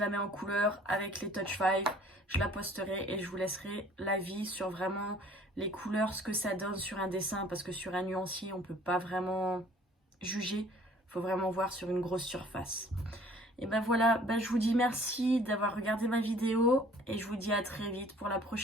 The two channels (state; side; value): normal; both; correlation 0.54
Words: mets en couleur avec les Touch 5. Je la posterai et je vous laisserai l'avis sur vraiment les couleurs, ce que ça donne sur un dessin. Parce que sur un nuancier, on ne peut pas vraiment juger. Il faut vraiment voir sur une grosse surface. Et ben voilà, je vous dis merci d'avoir regardé ma vidéo. Et je vous dis à très vite pour la